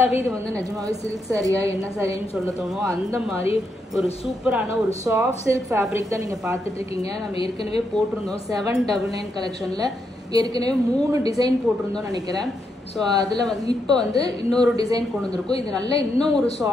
இது வந்து நிஜமாவே சில்க் சாரியா என்ன சாரின்னு சொல்ல தோணும். அந்த மாதிரி ஒரு சூப்பரான ஒரு சாஃப்ட் சில்க் ஃபேப்ரிக் தான் நீங்கள் பார்த்துட்டு இருக்கீங்க. நம்ம ஏற்கனவே போட்டிருந்தோம் 799 கலெக்ஷனில் ஏற்கனவே 3 டிசைன் போட்டிருந்தோம் நினைக்கிறேன். ஸோ அதில் வந்து இப்போ வந்து இன்னொரு டிசைன் கொண்டு வந்திருக்கும். இது நல்ல இன்னும் ஒரு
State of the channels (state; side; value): normal; both; correlation 0.81